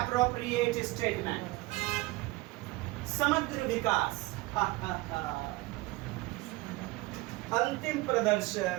statement? समग्र विकास, अंतिम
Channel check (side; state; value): left; quieter; 21.1 dB